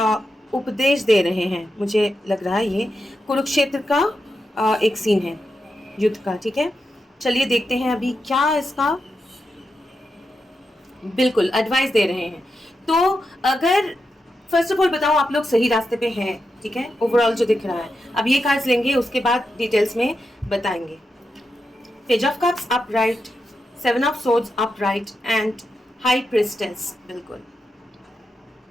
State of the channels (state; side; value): normal; both; correlation 0.87